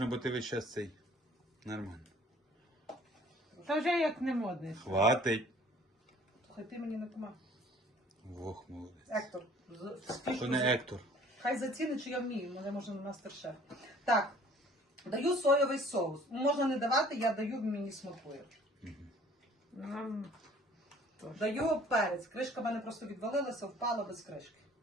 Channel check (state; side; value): normal; both; correlation 0.53